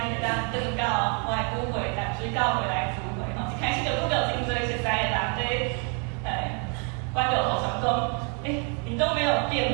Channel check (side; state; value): left; quieter; 37.1 dB